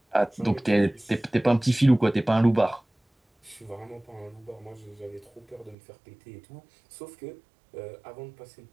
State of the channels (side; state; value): left; drops out; at 5.8 s